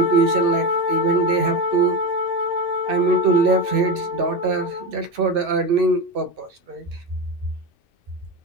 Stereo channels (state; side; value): late; left; 2.6 ms